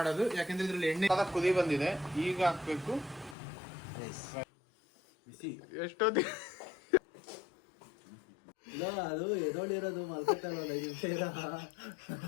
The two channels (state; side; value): drops out; right; at 3.4 s